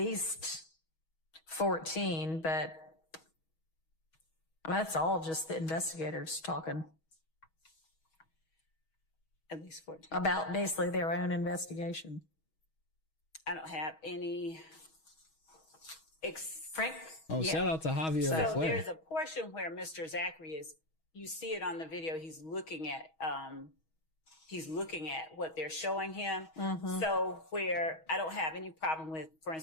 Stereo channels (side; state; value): right; late; 6.3 ms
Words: 14, but that's all just the investigators talking. At least 14. About basically their own investigation. I don't have any. Frank? Oh, yeah. Shout out to Javier. So there's a portion where Mr. Zachary is, you see it on the video, he's looking at what they're showing him. So where I don't have any problem with, for